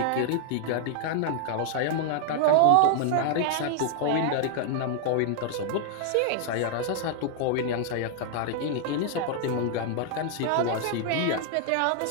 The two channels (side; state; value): both; different; correlation 0.00